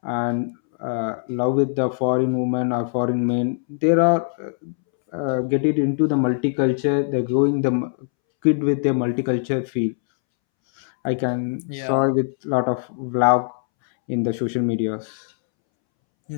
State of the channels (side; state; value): right; silent; 64 dB below the other